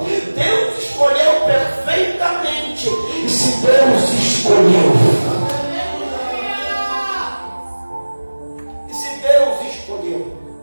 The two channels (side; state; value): both; inverted; correlation -1.00